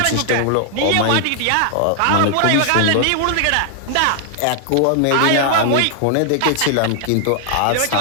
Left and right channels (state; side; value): different; both; correlation 0.00